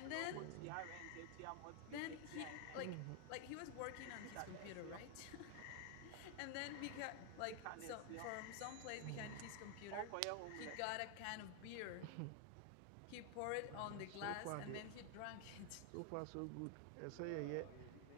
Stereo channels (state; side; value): different; both; correlation 0.00